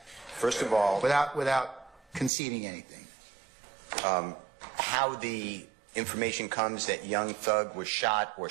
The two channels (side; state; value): left; drops out; at 2.3 s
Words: First of all, without conceding anything. How the information comes that Young Thug was shot or